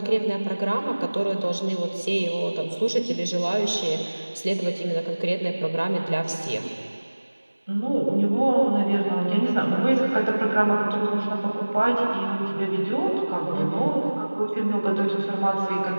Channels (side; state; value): both; inverted; correlation -1.00